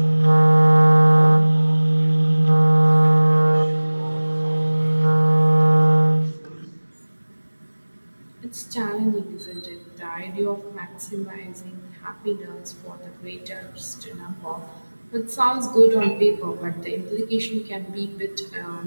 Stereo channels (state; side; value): inverted; both; correlation -1.00